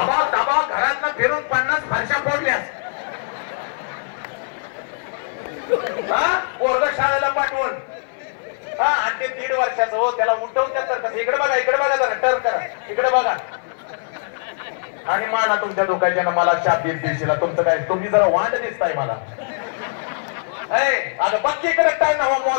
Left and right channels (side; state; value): right; silent; 56 dB below the other